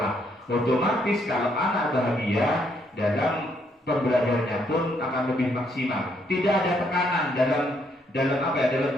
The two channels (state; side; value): normal; both; correlation 0.72